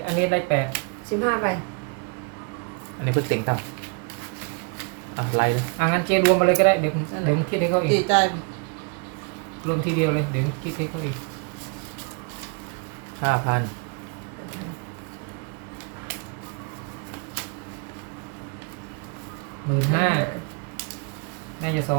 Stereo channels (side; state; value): left; quieter; 35.0 dB